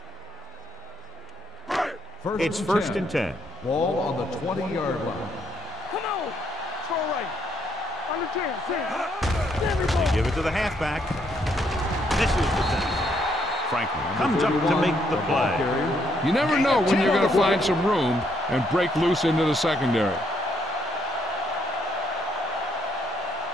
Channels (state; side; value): normal; both; correlation 0.73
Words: It's first and 10. Ball on the 20-yard line. Come on. Throw right. On the 10. They give it to the halfback. This is the tackle. Franklin comes up to make the play. You never know when you're going to find some room and break loose into the secondary.